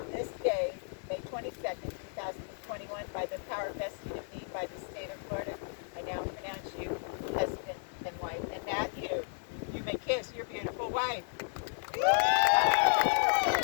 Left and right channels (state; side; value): silent; right; 55 dB below the other